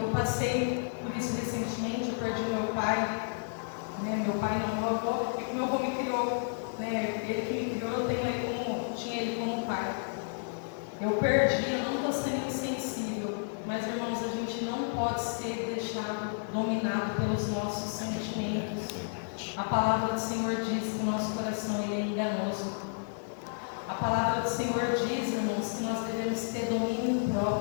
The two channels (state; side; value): silent; right; digital silence